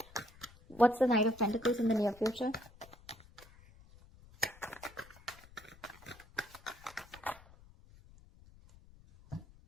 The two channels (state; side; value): noise; left; rumble, 23 dB below the sound